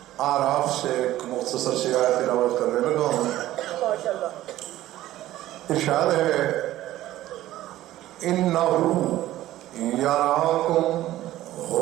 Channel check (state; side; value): quieter; left; 14.7 dB